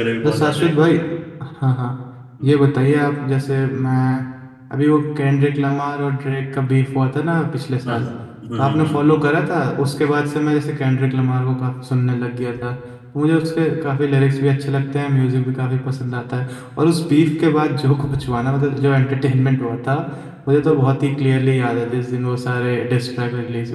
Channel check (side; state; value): both; identical; correlation 1.00